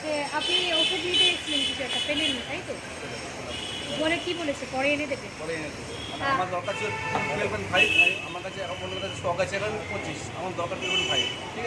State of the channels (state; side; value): identical; both; correlation 1.00